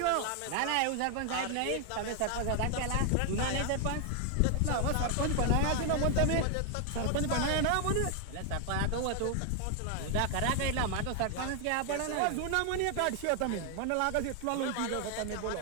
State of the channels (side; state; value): both; different; correlation 0.00